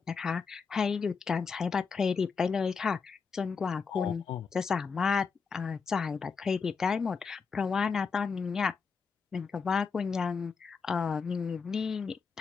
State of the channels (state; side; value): quieter; right; 5.5 dB